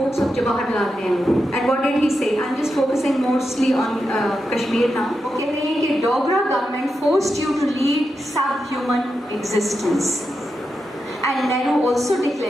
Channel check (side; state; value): both; normal; correlation 0.87